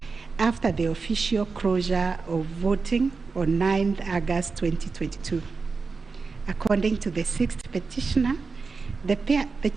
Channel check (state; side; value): quieter; left; 4.5 dB